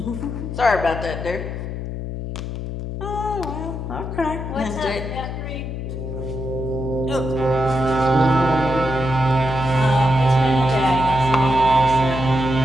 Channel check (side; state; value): left; noise; hum, 6 dB below the sound